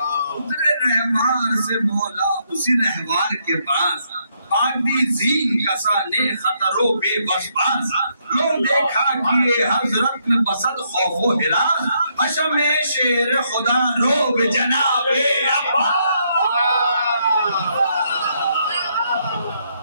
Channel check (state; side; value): inverted; both; correlation -0.75